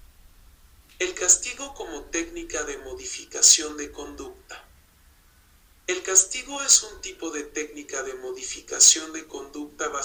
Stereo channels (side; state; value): both; identical; correlation 1.00